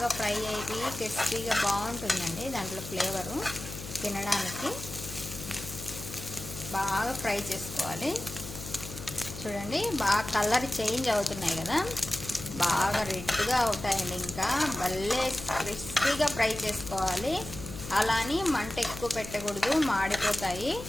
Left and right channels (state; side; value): noise; left; hum, 11 dB below the sound